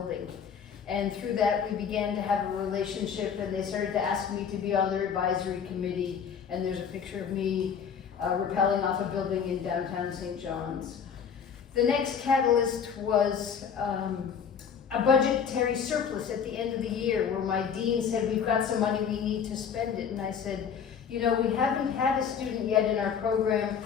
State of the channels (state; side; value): quieter; right; 7.2 dB